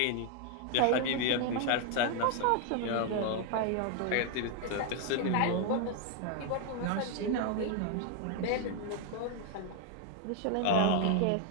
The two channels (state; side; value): different; both; correlation 0.01